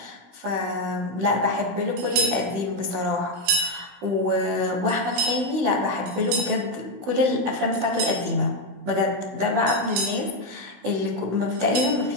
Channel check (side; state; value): left; late; 16 ms